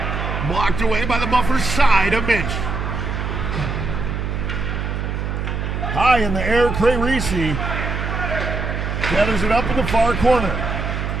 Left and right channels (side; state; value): right; noise; hum, 3 dB below the sound